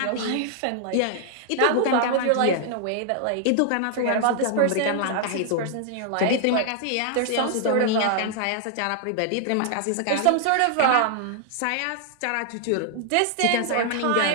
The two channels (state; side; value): different; both; correlation 0.00